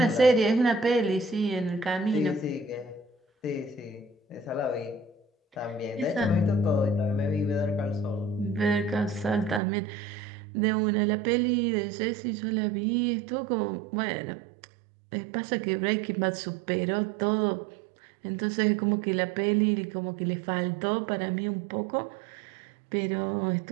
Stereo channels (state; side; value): drops out; left; at 9.6 s